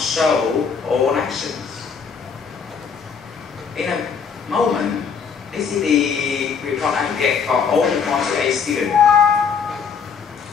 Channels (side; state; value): right; quieter; 6.2 dB